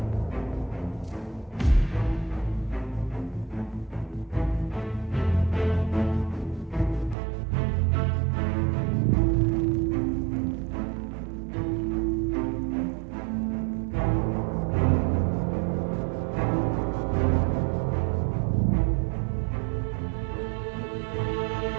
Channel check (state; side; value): drops out; left; at 7.2 s